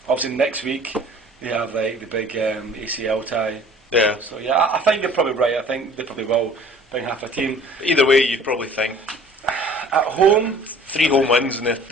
Obviously, next week they have like the big ACL tie. Yeah. So I think you're probably right. I think they probably will bring half a team. Either way, you'd probably think at home 3 home wins in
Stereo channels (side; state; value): both; normal; correlation 0.49